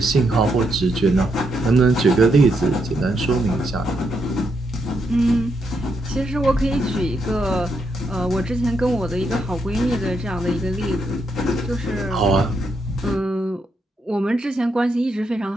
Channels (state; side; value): normal; both; correlation 0.80